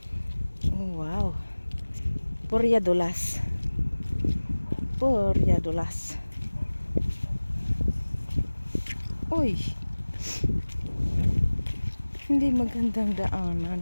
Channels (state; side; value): inverted; both; correlation -1.00